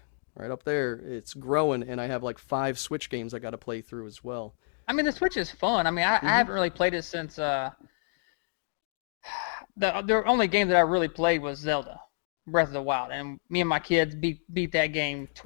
right up there, it's growing, and I have like 5 Switch games I got to play through as well. I mean, the Switch is fun. I mean, I Hmm. haven't really played it since the only game that I really played was Zelda Breath of the Wild, and me and my kids beat that game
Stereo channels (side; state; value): right; silent; digital silence